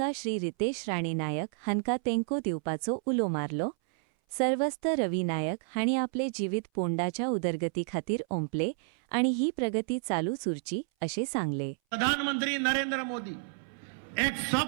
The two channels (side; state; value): left; silent; 57 dB below the other